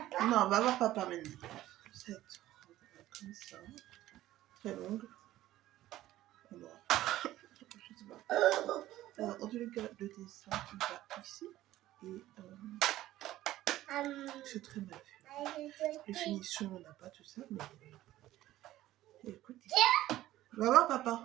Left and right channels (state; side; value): quieter; left; 14.8 dB